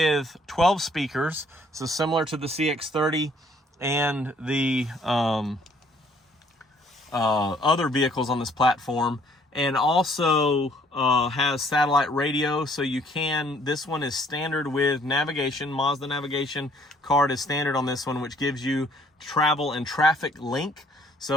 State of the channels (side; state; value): both; normal; correlation 0.62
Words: 12 speakers, so similar to the CX-30 and the other vehicles on this platform, and also has satellite radio, so you can, this one is standard with navigation. Mazda navigation card is standard on this one, which gives you travel and traffic link.